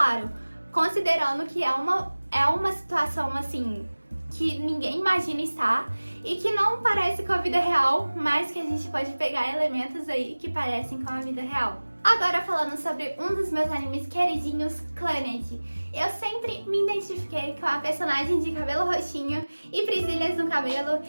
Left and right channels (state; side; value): inverted; both; correlation -1.00